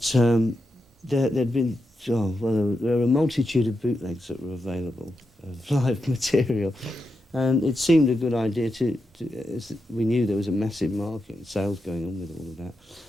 there'd been, there were a multitude of bootlegs that were available of live material. And it seemed a good idea as we knew there was a massive market and sales going on with all of that.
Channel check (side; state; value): both; normal; correlation 0.87